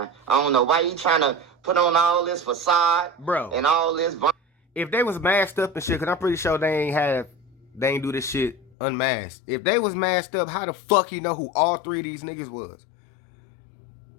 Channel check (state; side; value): drops out; right; at 8.7 s